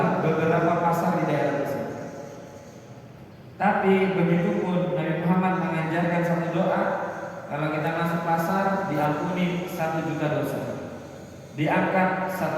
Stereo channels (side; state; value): both; identical; correlation 1.00